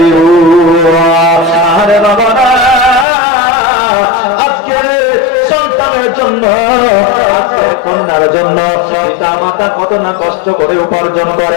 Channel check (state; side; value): drops out; right; at 3.1 s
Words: আরে বাবা, আজকে সন্তানের জন্য, আজকে কন্যার জন্য পিতা মাতা কত না কষ্ট করে উপার্জন